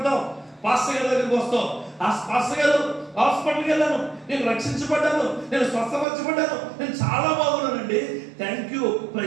పాస్టర్ గారి దగ్గరికి వస్తావు. ఆ పాస్టర్ గారు హాస్పిటల్కి వెళ్ళాను, నేను రక్షించబడ్డాను, నేను స్వస్థపరచబడ్డాను, నేను చాలా బాగున్నానండి, thank you,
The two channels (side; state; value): left; drops out; at 6.1 s